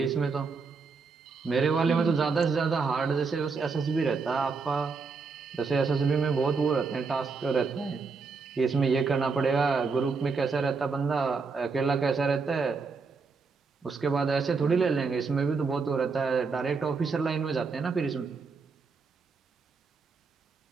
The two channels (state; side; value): quieter; left; 4.7 dB